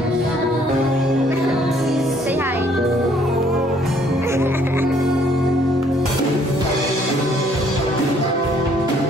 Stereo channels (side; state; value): both; normal; correlation 0.63